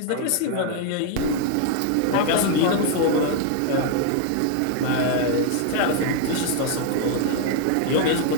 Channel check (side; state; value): both; different; correlation 0.00